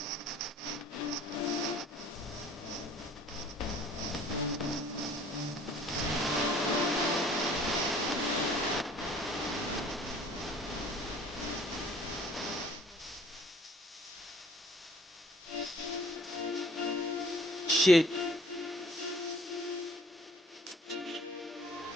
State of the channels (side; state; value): both; normal; correlation 0.53